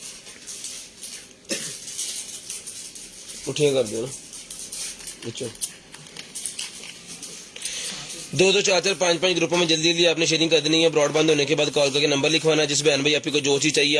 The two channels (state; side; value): identical; both; correlation 1.00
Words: उठिए कर दो ना बच्चों। 2-2 4-4 5-5 ग्रुपों में जल्दी जल्दी आपने शेयरिंग कर देनी है। ब्रॉडबैंड होने के बाद कॉल करके नंबर लिखवाना है। जिस बहन भाई आपको जो चीज़ चाहिए